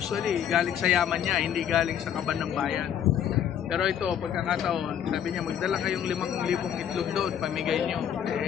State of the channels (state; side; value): quieter; right; 9.3 dB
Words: galing sa yaman niya, hindi galing sa kaban ng bayan. Pero ito, pagkakataon, sabi niya magdala kayong 5,000 itlog doon, pamigay niyo.